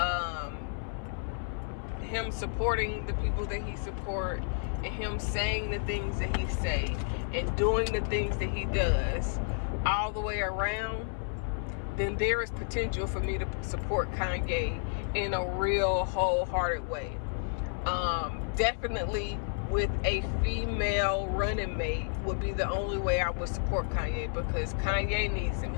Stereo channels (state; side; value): silent; right; 56 dB below the other